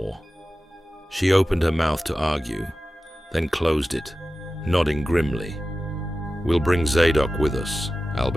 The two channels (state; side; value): normal; both; correlation 0.94